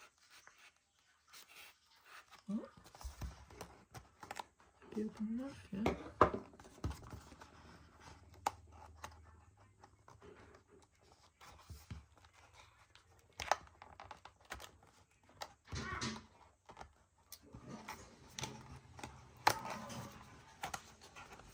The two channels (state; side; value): identical; both; correlation 1.00